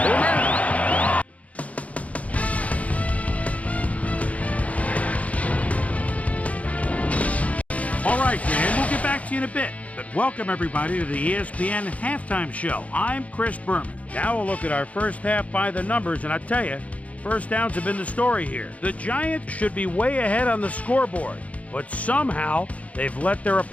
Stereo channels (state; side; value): late; right; 0.067 ms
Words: Boomer? All right, Dan, we'll get back to you in a bit. But welcome, everybody, to the ESPN Halftime Show. I'm Chris Berman. Now we'll look at our first half by the numbers, and I tell you, first downs have been the story here. The Giants should be way ahead on the scoreboard, but somehow they've let their